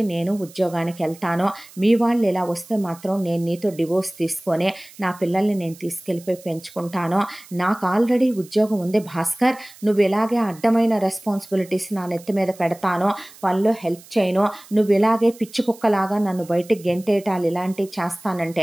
నేను ఉద్యోగానికి వెళ్తాను, మీ వాళ్ళు ఇలా వస్తే మాత్రం నేను నీతో డివోర్స్ తీసుకొని నా పిల్లల్ని నేను తీసుకెళ్ళిపోయి పెంచుకుంటాను, నాకు ఆల్రెడీ ఉద్యోగం ఉంది భాస్కర్, నువ్వు ఇలాగే అడ్డమైన రెస్పాన్సిబిలిటీస్ నా నెత్తి మీద పెడతాను, పనిలో హెల్ప్ చేయను, నువ్వు ఇలాగే పిచ్చి కుక్కలాగా నన్ను బయటికి గెంటేటాలు ఇలాంటివి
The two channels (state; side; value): noise; right; hiss, 22 dB below the sound